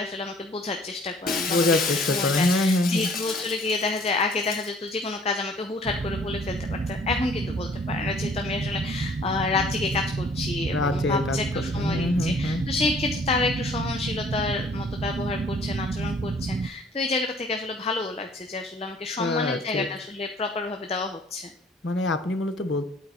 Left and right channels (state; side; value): normal; both; correlation 0.56